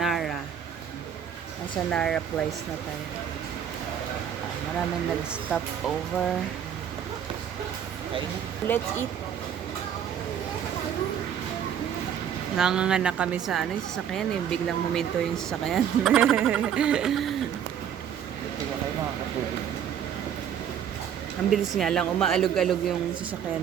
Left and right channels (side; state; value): left; quieter; 8.9 dB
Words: Nasa Nara Place na tayo. Maraming nag-stop over. Let's eat. Nganga na kami sa ano, yung sasakyan eh. Biglang huminto yung sasakyan. Ang bilis nga lang, umaalog-alog yung